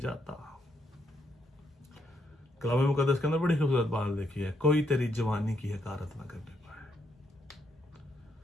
कलाम मुकद्दस के अंदर बड़ी खूबसूरत बात देखी है, कोई तेरी जवानी की हकारत ना करने पाए।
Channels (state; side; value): normal; both; correlation 0.76